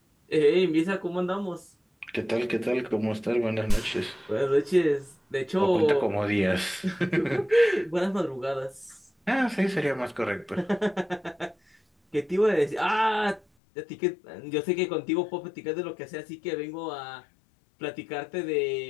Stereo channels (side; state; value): right; drops out; at 13.4 s